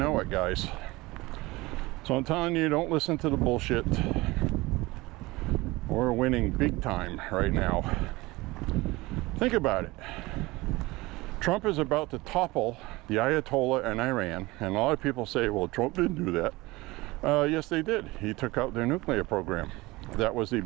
it, guys. So I'm telling you, don't listen to the bullshit. We're winning big time right now. Think about it. Trump is about to topple the Ayatollah in Iran. And a lot of people say, well, Trump didn't do that. Yes, they did. He took out their nuclear program. That was the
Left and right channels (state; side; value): quieter; left; 21.3 dB